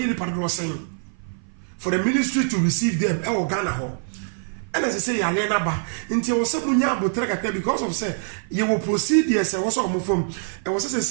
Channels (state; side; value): silent; left; 56 dB below the other